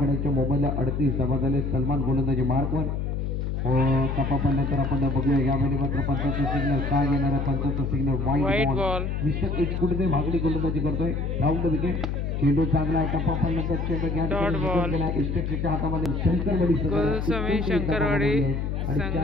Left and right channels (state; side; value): noise; left; hum, 1 dB below the sound